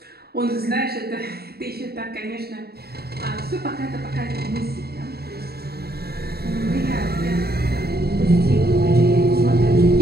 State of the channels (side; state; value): left; late; 0.46 ms